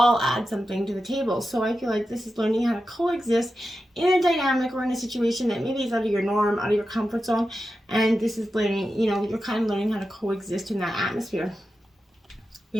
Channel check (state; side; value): normal; both; correlation 0.91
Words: add something to the table. So I feel like this is learning how to coexist in a dynamic or in a situation that maybe is out of your norm, out of your comfort zone. And this is learning, you're kind of learning how to coexist in that atmosphere. We